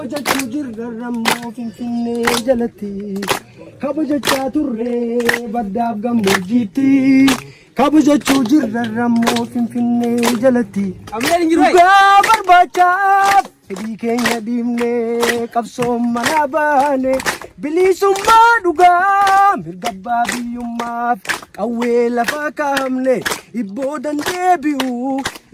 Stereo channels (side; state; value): both; identical; correlation 1.00